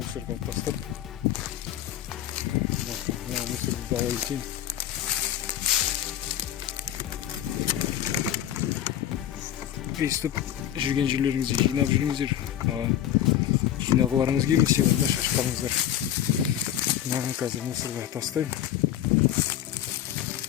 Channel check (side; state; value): right; quieter; 11.2 dB